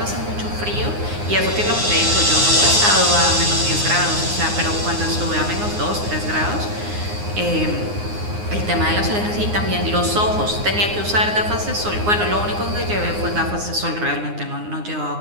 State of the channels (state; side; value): late; left; 9.7 ms